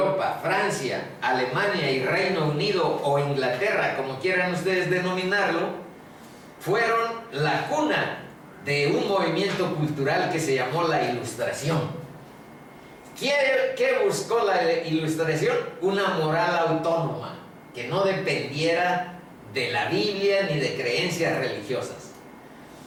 Francia, Alemania y Reino Unido, o Inglaterra, como quieran ustedes denominarlo, fueron la cuna de un movimiento cultural que se llamó la Ilustración. ¿Qué buscó la Ilustración? Una moral autónoma, que no dependiera de la Biblia ni de creencias religiosas,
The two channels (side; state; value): both; identical; correlation 1.00